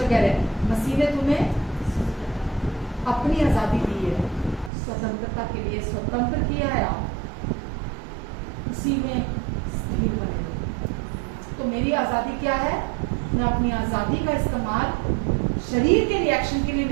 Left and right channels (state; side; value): drops out; left; at 4.7 s